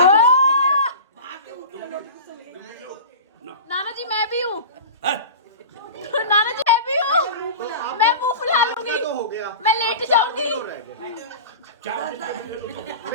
नाना जी मैं भी हूँ, नाना जी मैं भी हूँ, मैं मुंह फुला लूंगी, मैं लेट जाऊंगी।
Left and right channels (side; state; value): both; inverted; correlation -0.33